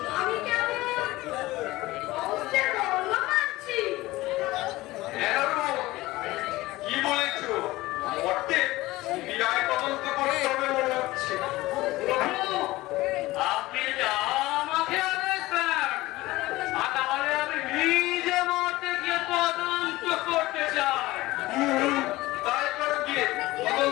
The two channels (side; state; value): right; quieter; 18.7 dB